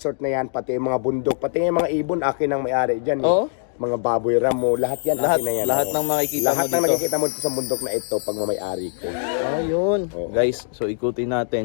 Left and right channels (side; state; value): right; silent; digital silence